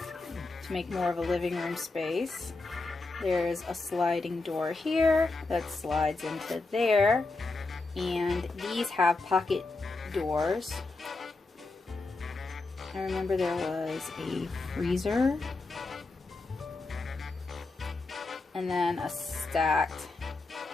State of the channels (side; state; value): right; quieter; 3.5 dB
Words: To make more of a living room space. There's a sliding door here that slides into there, and these have pocket doors. I remember there was a freezer and then a stacked